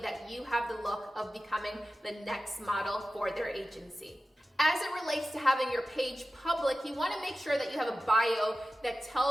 you have the look of becoming the next model for their agency. As it relates to having your page public, you want to make sure that you have a bio that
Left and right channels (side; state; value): both; normal; correlation 0.94